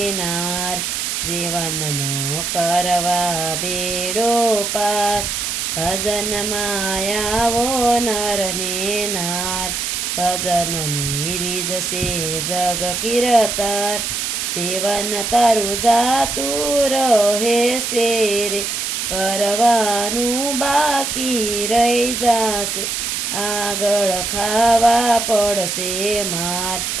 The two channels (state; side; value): noise; right; hiss, 2 dB below the sound